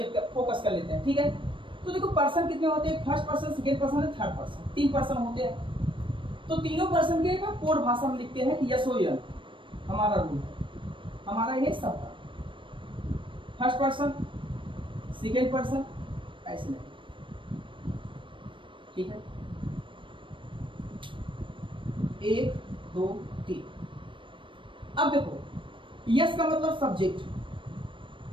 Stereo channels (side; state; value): left; late; 0.25 ms